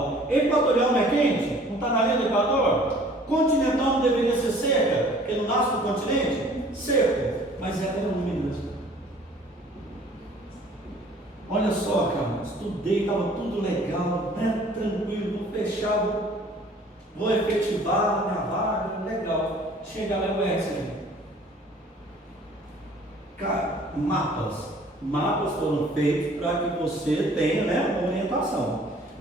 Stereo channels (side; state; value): both; normal; correlation 0.52